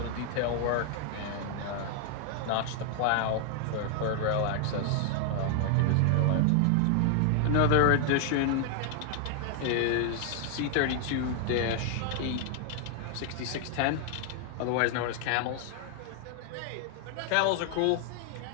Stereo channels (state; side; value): different; both; correlation 0.00